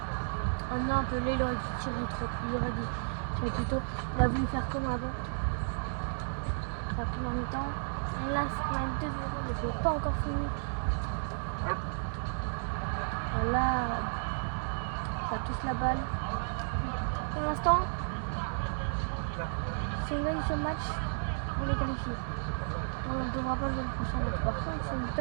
Oh non, Pelé, il aurait dû tirer trop. Il a voulu faire comme avant. La première mi-temps. Là, c'est quand même 2-0, mais c'est pas encore fini. Là, ça touche la balle. Pour l'instant, si on gagne ce match, on est qualifié. On ne devra pas jouer le prochain match. Par contre, si on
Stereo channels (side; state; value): left; silent; digital silence